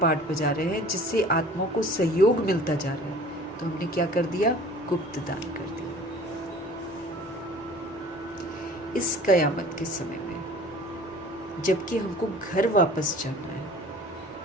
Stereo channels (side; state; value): both; normal; correlation 0.46